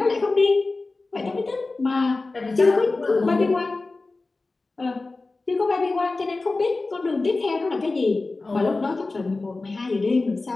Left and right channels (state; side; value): quieter; right; 3.4 dB